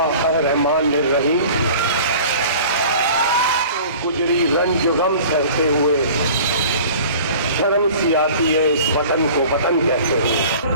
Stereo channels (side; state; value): both; inverted; correlation -0.44